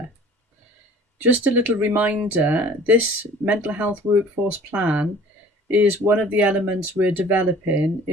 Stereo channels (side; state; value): both; normal; correlation 0.49